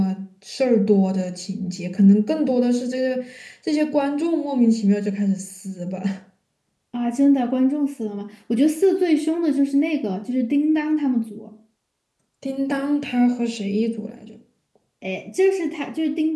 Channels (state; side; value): identical; both; correlation 1.00